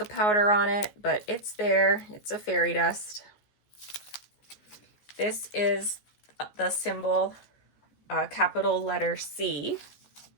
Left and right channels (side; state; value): right; late; 14 ms